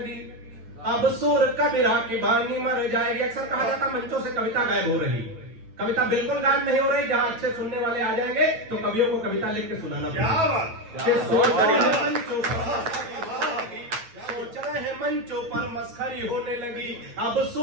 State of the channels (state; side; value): late; left; 8.9 ms